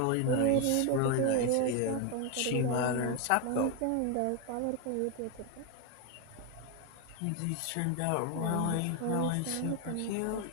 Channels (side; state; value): both; different; correlation 0.01